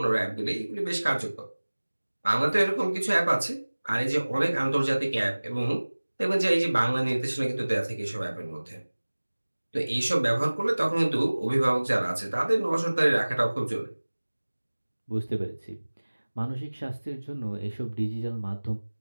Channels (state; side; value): inverted; both; correlation -1.00